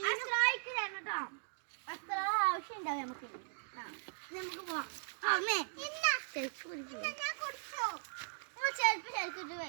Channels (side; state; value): left; silent; digital silence